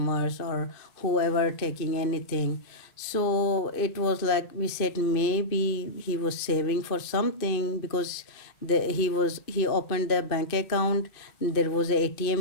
or whoever taking anything. So it was like we said maybe he was saving for something because he opened the bank account. There was a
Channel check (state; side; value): late; right; 2.5 ms